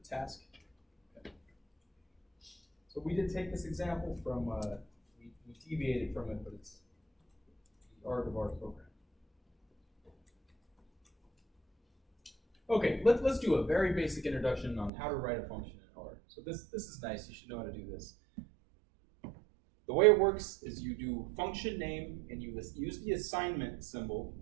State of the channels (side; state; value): left; drops out; at 14.9 s